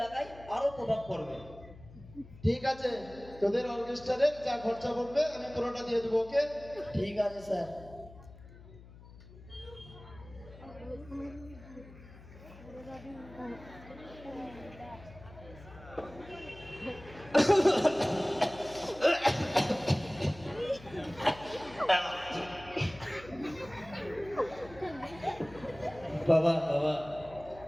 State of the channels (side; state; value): left; noise; hum, 19 dB below the sound